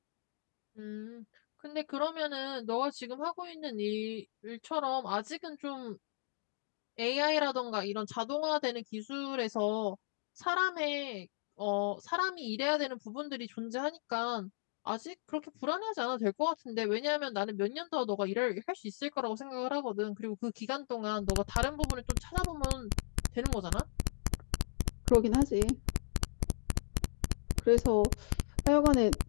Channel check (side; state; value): right; silent; digital silence